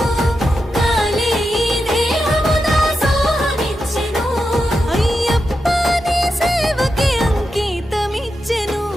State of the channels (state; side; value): normal; both; correlation 0.88